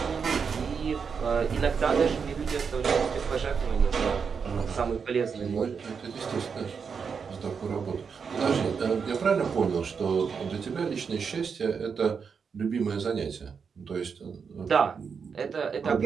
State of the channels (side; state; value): left; quieter; 6.0 dB